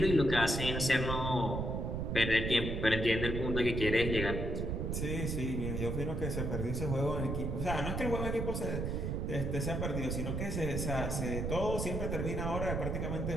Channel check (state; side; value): noise; right; rumble, 1 dB below the sound